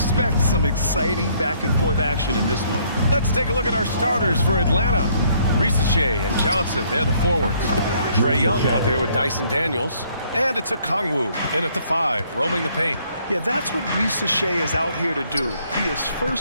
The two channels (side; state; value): both; inverted; correlation -0.65